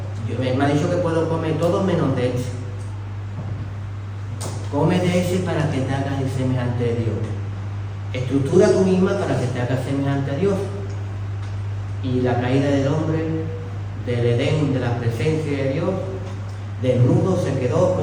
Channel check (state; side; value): identical; both; correlation 1.00